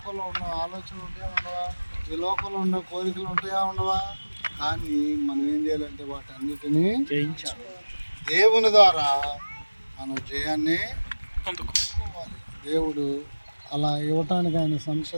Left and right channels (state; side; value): inverted; both; correlation -1.00